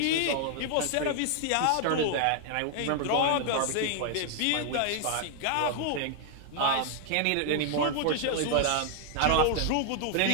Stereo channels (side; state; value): both; different; correlation 0.00